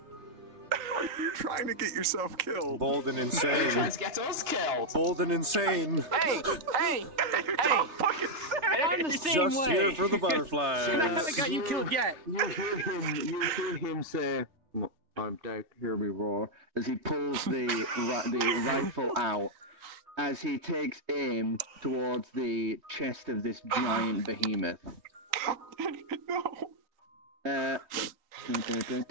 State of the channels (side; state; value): left; late; 3.3 ms